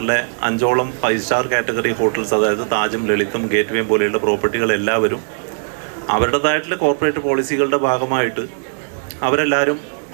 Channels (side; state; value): left; silent; digital silence